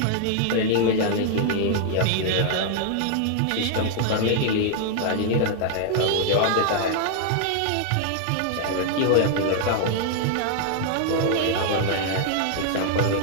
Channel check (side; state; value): both; different; correlation -0.01